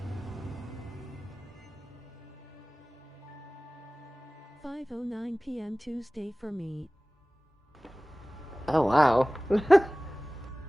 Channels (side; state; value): both; normal; correlation 0.98